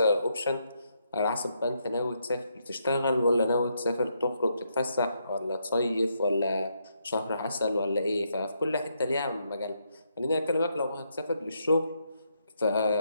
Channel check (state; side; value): inverted; both; correlation -0.77